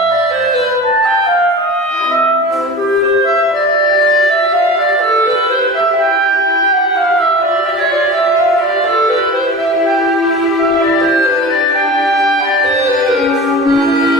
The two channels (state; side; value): normal; both; correlation 0.35